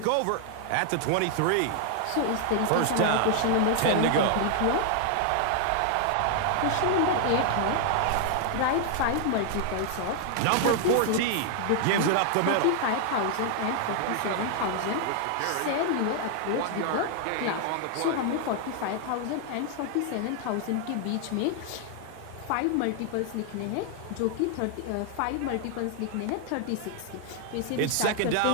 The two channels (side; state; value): both; different; correlation 0.00